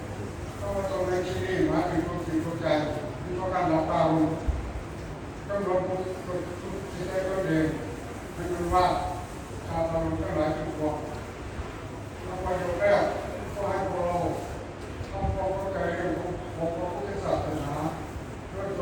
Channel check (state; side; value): identical; both; correlation 1.00